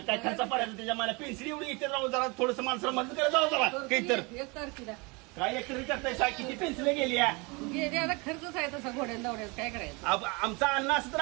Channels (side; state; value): left; quieter; 28.0 dB